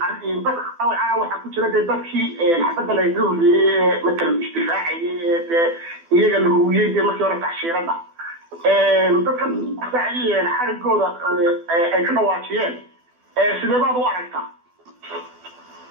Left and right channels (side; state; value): left; late; 12 ms